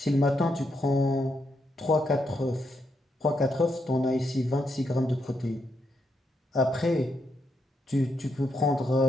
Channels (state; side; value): normal; both; correlation 0.80